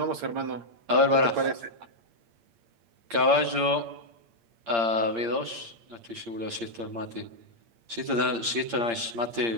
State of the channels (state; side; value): late; left; 8.7 ms